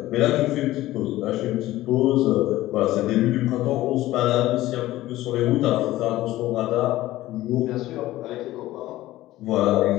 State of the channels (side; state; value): right; quieter; 16.1 dB